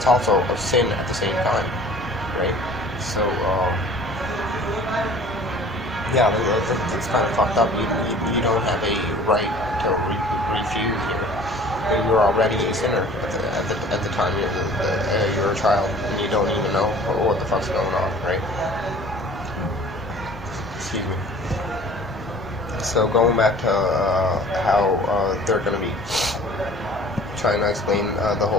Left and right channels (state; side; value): normal; both; correlation 0.47